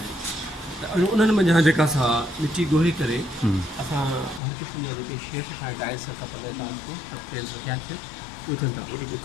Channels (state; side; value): drops out; right; at 4.4 s